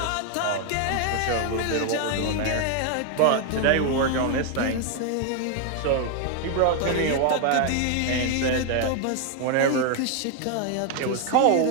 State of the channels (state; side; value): different; both; correlation 0.00